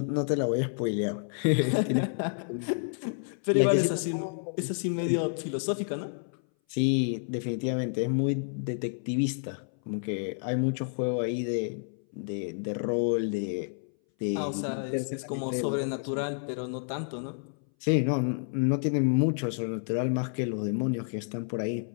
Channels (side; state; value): right; silent; 58 dB below the other